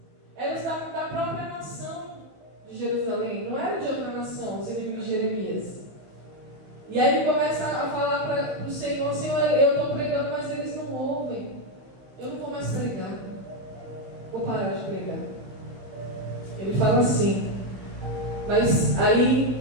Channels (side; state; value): left; late; 16 ms